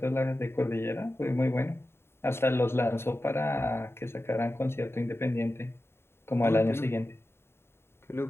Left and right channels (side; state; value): right; late; 0.12 ms